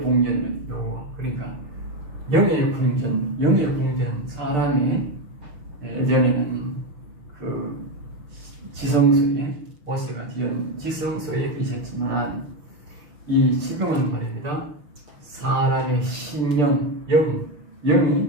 여호와. 그러니까 영의 풍전, 영의 풍전. 사람의 예전에는 그 지성소에 모세가 지은 지성소에 계셨지만, 이 지금은 말입니다. 사람의 심령,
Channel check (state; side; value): late; left; 6.7 ms